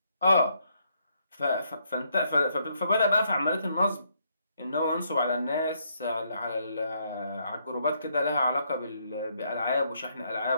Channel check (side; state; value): both; inverted; correlation -0.73